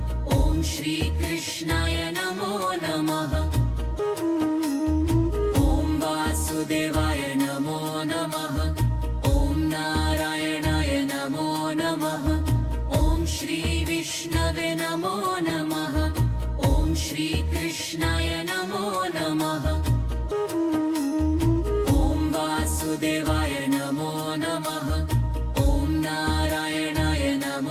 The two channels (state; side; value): identical; both; correlation 1.00